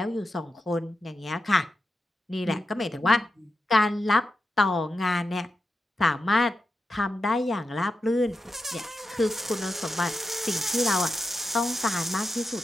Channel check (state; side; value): normal; both; correlation 0.88